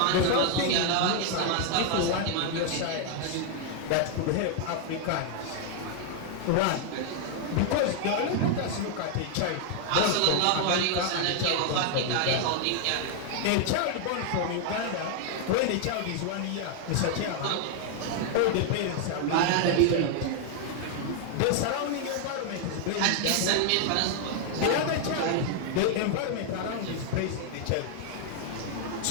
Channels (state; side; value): different; both; correlation 0.00